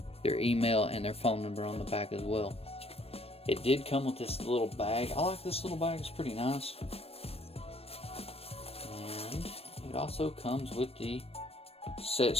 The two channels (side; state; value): right; late; 0.28 ms